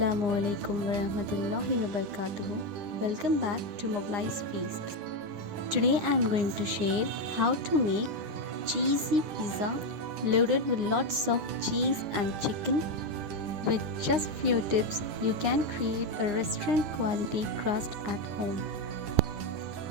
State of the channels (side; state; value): left; late; 9.8 ms